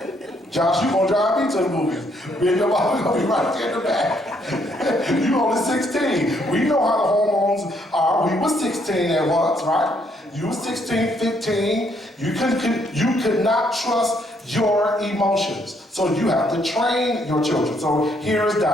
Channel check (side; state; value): both; normal; correlation 0.70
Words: Josh, you gonna drive me to the movies. Me and your mom gonna be right there in the back. You only 16. We know how the hormones are. We was 16 at once, right? You was 16, 15. You could not trust your emotions. So you have to train your children. So here's